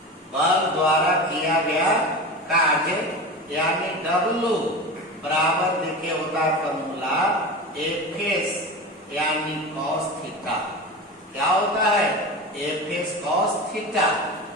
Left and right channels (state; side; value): normal; both; correlation 0.28